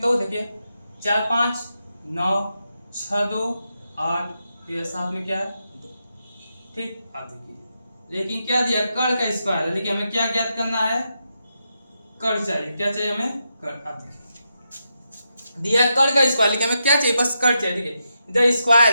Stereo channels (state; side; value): inverted; both; correlation -0.85